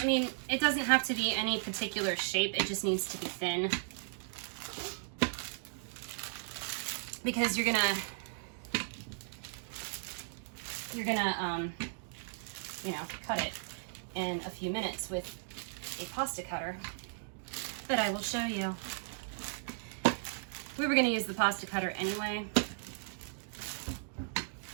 mean, it doesn't have to be any particular shape, it just needs to be thin. Because you're gonna, you know, cut it in a few minutes with a pasta cutter. But I will show you. We were gonna use the pasta cutter anyway,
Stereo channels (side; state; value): left; silent; digital silence